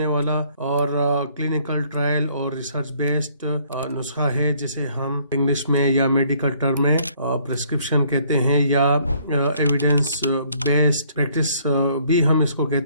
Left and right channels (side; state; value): both; inverted; correlation -0.63